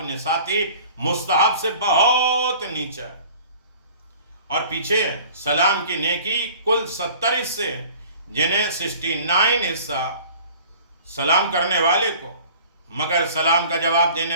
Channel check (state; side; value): inverted; both; correlation -0.47